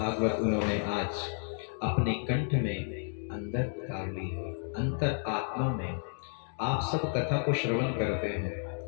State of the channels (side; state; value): right; silent; 57 dB below the other